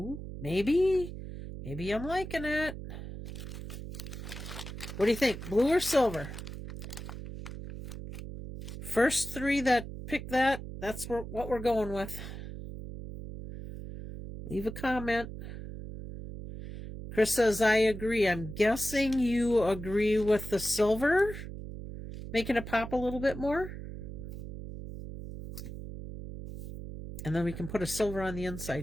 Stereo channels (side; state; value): right; noise; hum, 9 dB below the sound